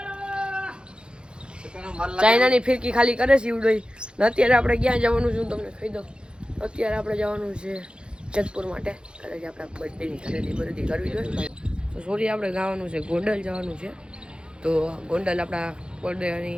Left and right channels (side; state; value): left; late; 0.052 ms